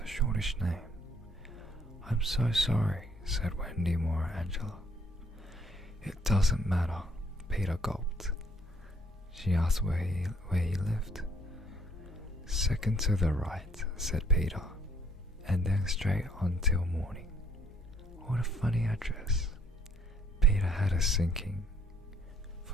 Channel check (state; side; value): normal; both; correlation 0.64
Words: shortish name. I'm so sorry, said Wendy more Angela. It doesn't matter, Peter gulped. She asked where he lived. Second to the right, said Peter, and then straight on till morning. What a funny address. Peter had a sinking.